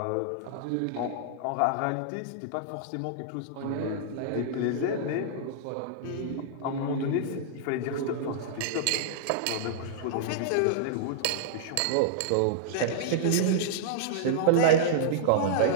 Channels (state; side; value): different; both; correlation -0.02